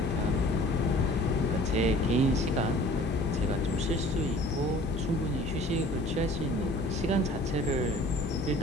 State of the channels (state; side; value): normal; both; correlation 0.49